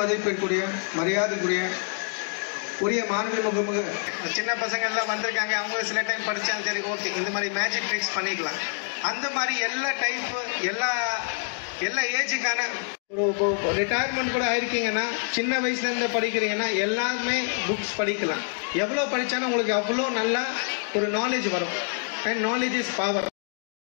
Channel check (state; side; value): silent; right; 61 dB below the other